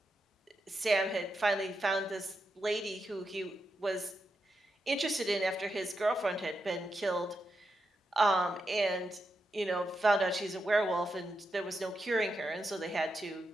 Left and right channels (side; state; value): both; normal; correlation 0.86